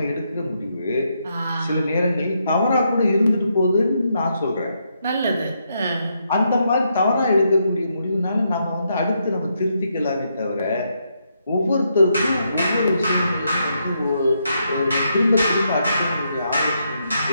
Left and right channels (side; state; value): both; inverted; correlation -0.79